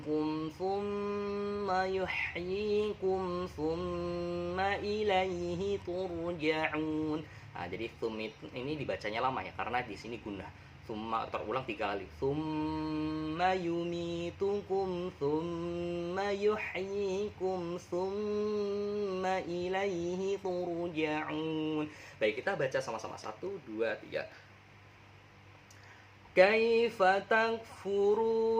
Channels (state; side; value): identical; both; correlation 1.00